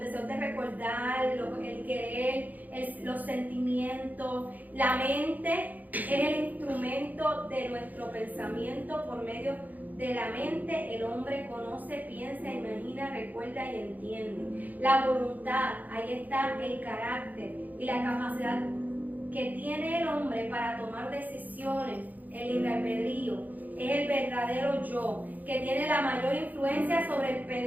de recordar, el querer, los sentimientos. La mente es el instrumento de nuestro pensamiento. Por medio de la mente el hombre conoce, piensa, imagina, recuerda y entiende. La voluntad, ahí está el carácter y la capacidad que tiene el hombre para tomar decisiones, el libre albedrío. Es el verdadero yo, que tiene la mayor influencia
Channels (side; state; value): left; late; 0.081 ms